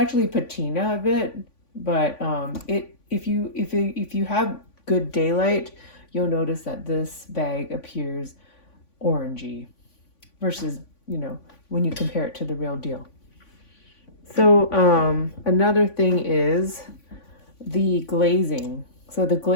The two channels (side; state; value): right; late; 3.5 ms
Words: patina a bit, but if you have good daylight, you'll notice that this bag appears orangey versus, when you compare it to the real deal. So another thing is the glazing. So the